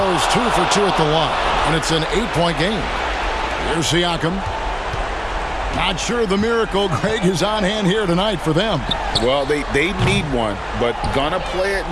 2 for 2 at the line, and it's an 8-point game. Here's Siakam. Not sure the miracle, Greg, is on hand here tonight for them. Well, they need one, but gonna play it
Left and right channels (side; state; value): both; identical; correlation 1.00